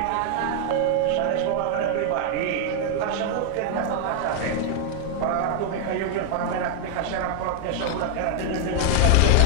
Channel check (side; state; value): both; different; correlation 0.00